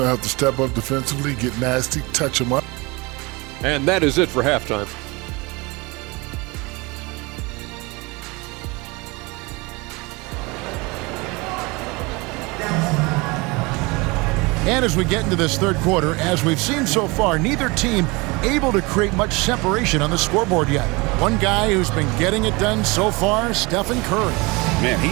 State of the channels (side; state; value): left; quieter; 25.5 dB